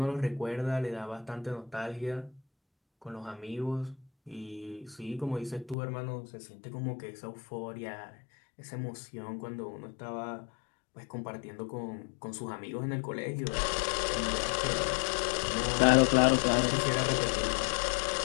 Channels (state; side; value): drops out; right; at 5.8 s